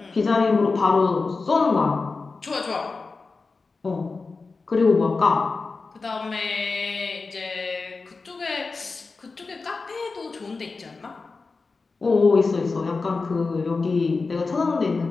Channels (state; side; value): quieter; right; 4.1 dB